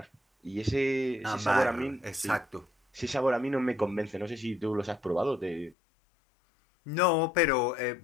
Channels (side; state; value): right; drops out; at 5.8 s